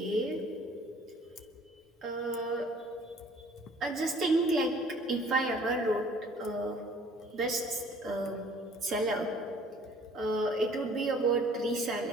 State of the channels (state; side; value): normal; both; correlation 0.54